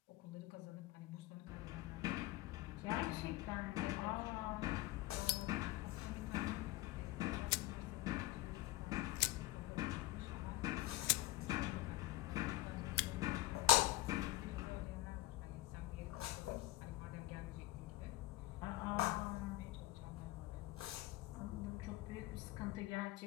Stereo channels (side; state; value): right; quieter; 17.1 dB